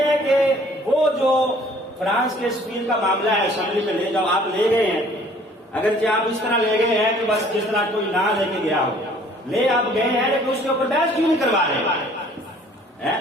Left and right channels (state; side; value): normal; both; correlation 0.55